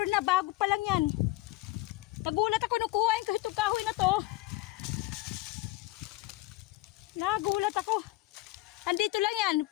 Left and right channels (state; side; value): quieter; right; 18.3 dB